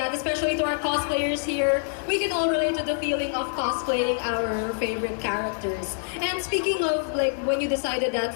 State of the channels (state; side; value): silent; right; digital silence